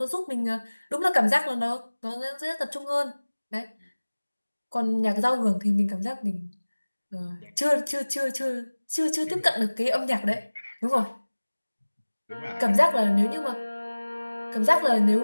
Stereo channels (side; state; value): both; inverted; correlation -1.00